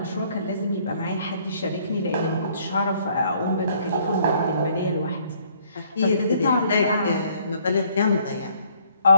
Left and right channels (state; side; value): inverted; both; correlation -0.63